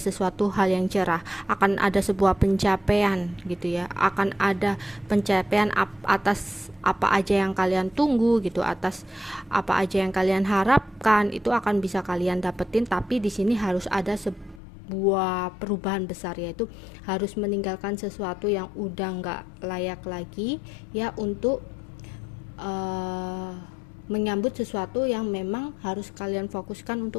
sesuatu hal yang cerah, akan ada sebuah pencapaian gitu ya, akan ada pencapaian atas apa aja yang kalian tunggu gitu, atas apa aja yang kalian harapkan, itu akan bisa kalian dapetin. Tapi di sini harus ada sebuah perubahan besar, yaitu harus meninggalkan sesuatu yang udah nggak layak lagi ya, untuk menyambut sesuatu yang memang harus kalian fokuskan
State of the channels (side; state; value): right; drops out; at 14.6 s